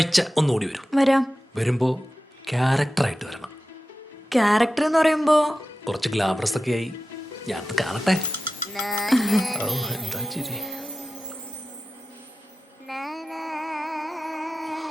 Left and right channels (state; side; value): normal; both; correlation 0.93